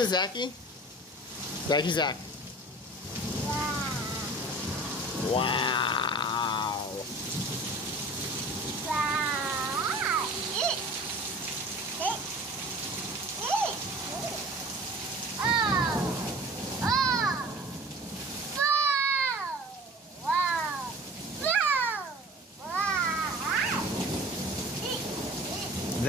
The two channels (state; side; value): normal; both; correlation 0.42